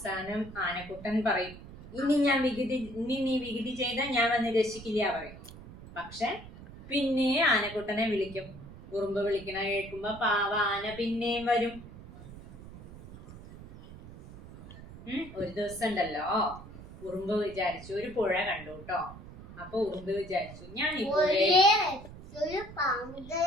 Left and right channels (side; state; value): right; noise; rumble, 16 dB below the sound